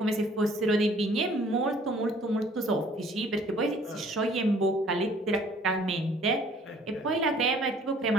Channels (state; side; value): normal; both; correlation 0.56